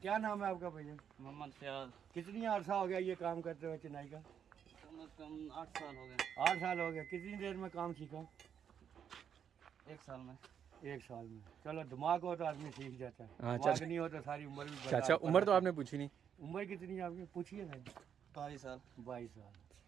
क्या नाम है आपका भैया? मोहम्मद फयाज। कितनी अर्सा हो गया ये काम करते हुए चिनाई का? कम से कम 8 साल हो गए। 8 साल हो गया। कितनी देर में काम सीखा? 1 साल में। 1 साल में। चलो दिमाग हो तो आदमी सीख जाता है। हाँ, दिमाग चाचा। नहीं हो तो सारी उम्र भी बर्बाद चाचा कर उम्र तो देता है। आपने पूछी नहीं। उम्र कितनी है आपकी? पूछिए ना। 22 साल। 22 साल।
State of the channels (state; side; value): quieter; left; 8.3 dB